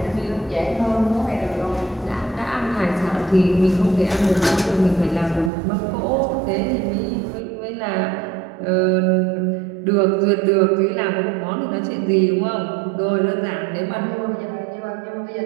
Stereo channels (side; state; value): left; drops out; at 5.5 s